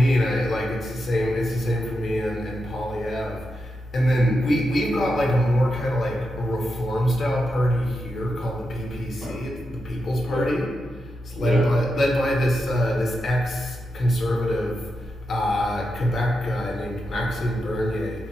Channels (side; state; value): both; normal; correlation 0.87